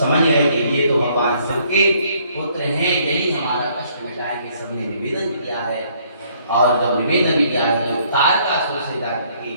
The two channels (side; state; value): both; inverted; correlation -0.65